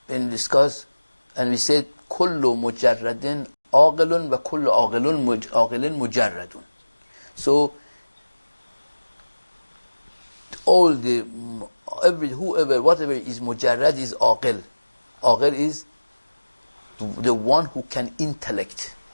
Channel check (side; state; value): both; inverted; correlation -1.00